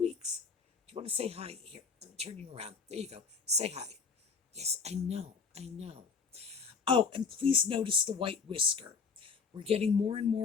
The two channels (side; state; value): right; quieter; 5.3 dB